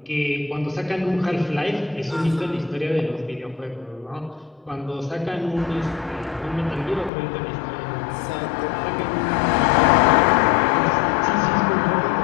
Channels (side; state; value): right; drops out; at 7.1 s